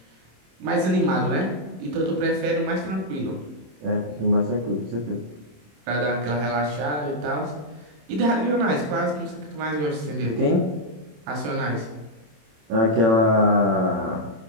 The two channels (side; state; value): left; late; 27 ms